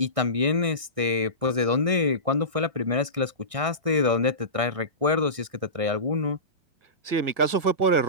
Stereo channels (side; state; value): left; late; 1.6 ms